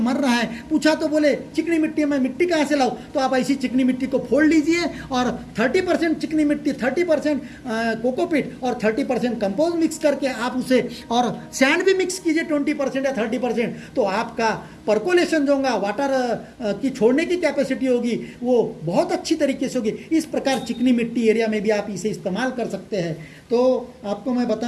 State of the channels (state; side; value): identical; both; correlation 1.00